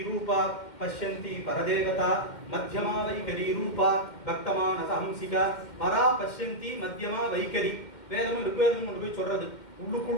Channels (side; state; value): right; late; 2.1 ms